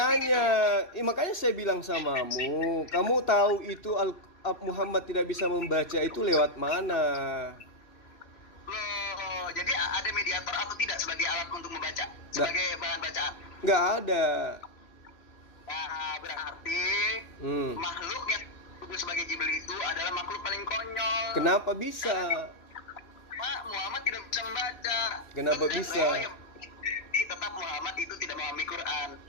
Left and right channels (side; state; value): right; late; 3.0 ms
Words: saya bilang samamu, kamu tahu itu Muhammad tidak bisa membaca itu lewat mana? Loh, jadi ada mediator atau tidak sebagai alat untuk membaca, sebagai bahan bacaan? Nggak ada. Nah, berarti makhluk yang disebut sebagai Jibril itu adalah makhluk paling konyol. Kenapa bisa? Pak, Muhammad tidak bisa membaca. Kenapa bisa? Tetap Muhammad itu tidak memahami Quran.